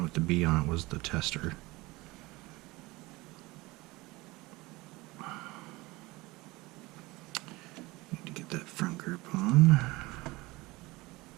with the B on it was the tester. Need to get that front grip on.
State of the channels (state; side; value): quieter; left; 21.7 dB